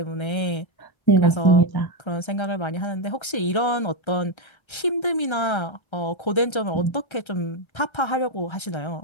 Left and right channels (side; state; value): right; late; 1.3 ms